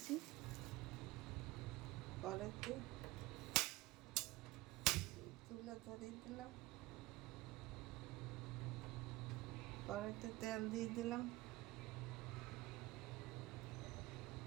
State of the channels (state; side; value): quieter; left; 19.4 dB